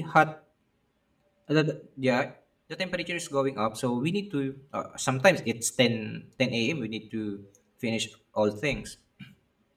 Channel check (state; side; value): identical; both; correlation 1.00